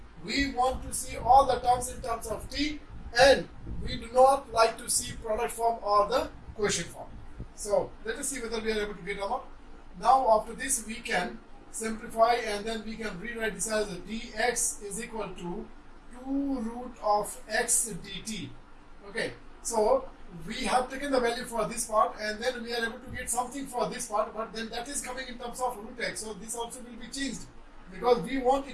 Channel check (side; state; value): both; identical; correlation 1.00